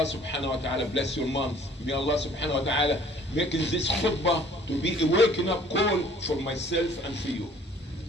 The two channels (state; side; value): normal; both; correlation 0.54